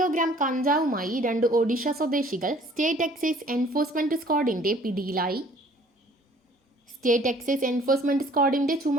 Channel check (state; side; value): normal; both; correlation 0.55